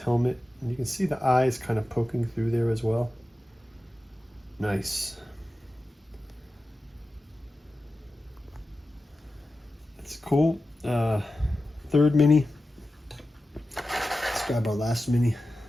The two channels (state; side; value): normal; both; correlation 0.94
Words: And you can see the eyes kind of poking through there as well. Nice. It's cool. Third mini. Let's grab our last mini.